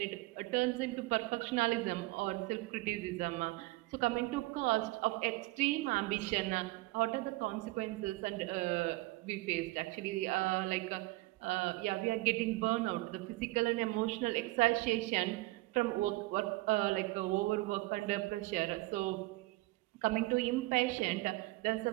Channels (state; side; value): quieter; left; 20.8 dB